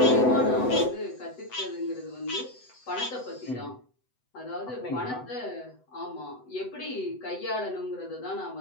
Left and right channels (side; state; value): right; late; 8.0 ms